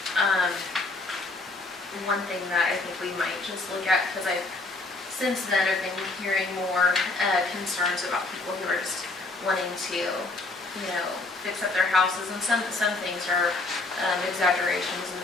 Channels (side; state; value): right; quieter; 3.2 dB